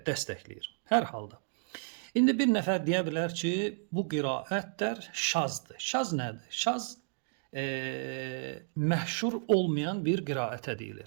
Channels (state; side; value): silent; left; digital silence